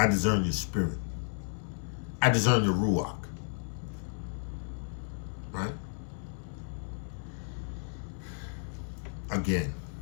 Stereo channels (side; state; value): right; silent; digital silence